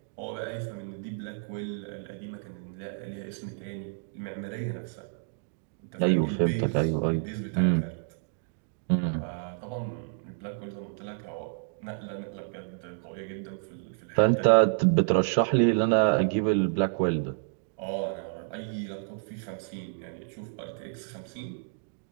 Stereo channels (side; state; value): left; silent; digital silence